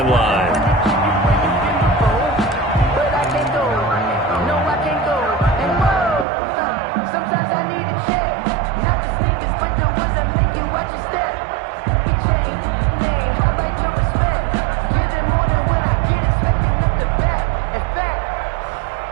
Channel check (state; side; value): drops out; left; at 6.2 s